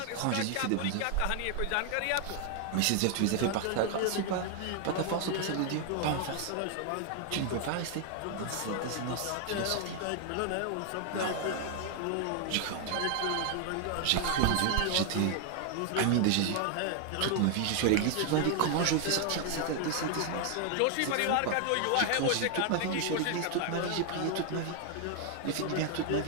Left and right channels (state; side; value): different; both; correlation 0.00